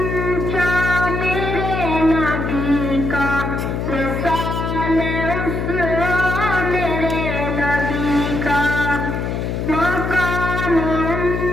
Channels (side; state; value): left; noise; hum, 2 dB below the sound